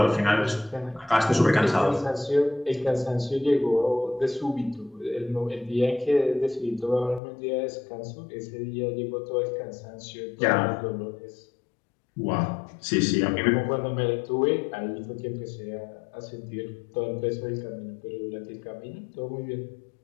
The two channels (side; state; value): right; drops out; at 7.2 s